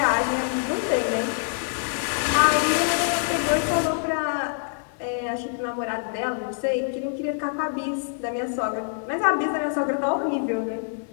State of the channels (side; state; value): right; silent; digital silence